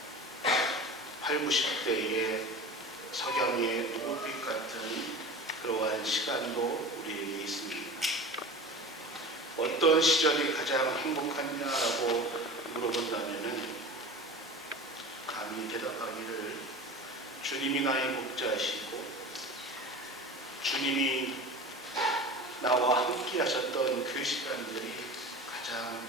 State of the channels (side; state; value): both; normal; correlation 0.34